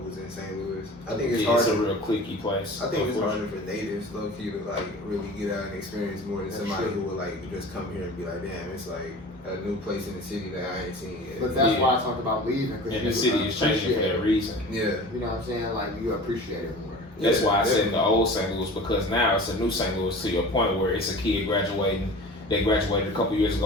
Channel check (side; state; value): both; normal; correlation 0.39